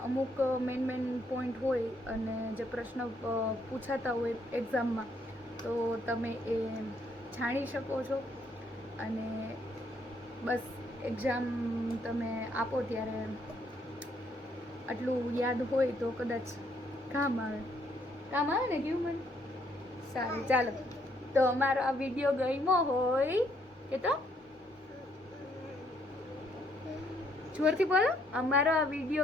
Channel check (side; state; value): both; normal; correlation 0.70